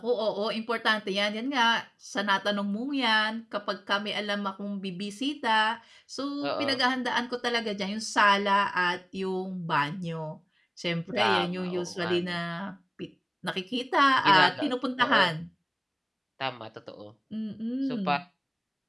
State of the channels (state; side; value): identical; both; correlation 1.00